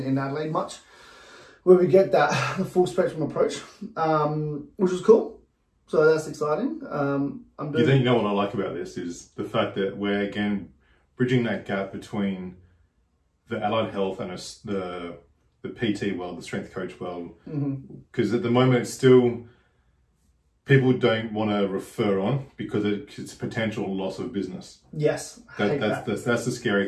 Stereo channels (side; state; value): both; identical; correlation 1.00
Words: in Adelaide much, where we get that the full spectrum approach, which was cool. So that's exciting. You know what I like about this is the fact that we're again bridging that gap between the allied health and the PT world, the strength coach world, because at the moment it's still, people don't want to refer on because it's potential loss of business. Yes, that's the